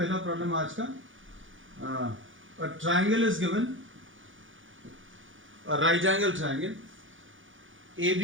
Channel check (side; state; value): left; late; 0.57 ms